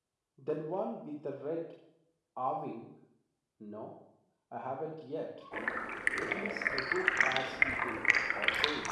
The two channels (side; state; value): both; identical; correlation 1.00